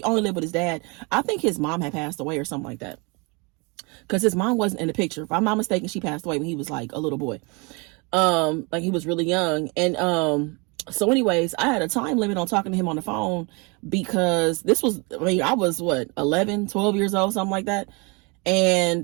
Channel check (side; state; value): left; quieter; 30.2 dB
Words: only lived with his dad. I think his mom had passed away or something like that, because his mom wasn't in the picture. If I'm not mistaken, she passed away when he was like a little boy, like he was really young. And so anyways, I had a time limit on talking to him on the phone, because this was, I was 11, 12 years old, something like that.